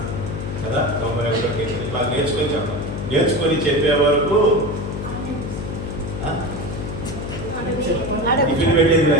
కదా, 91వ కీర్తన ఇట్లా నేర్చుకొని చెప్పాలి. నేర్చుకొని చెప్పే వరకు టిఫిన్ పెట్టేది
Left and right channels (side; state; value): left; noise; hum, 6 dB below the sound